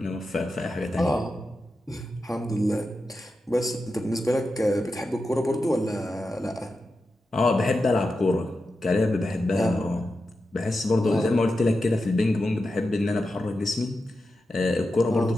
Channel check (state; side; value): normal; both; correlation 0.90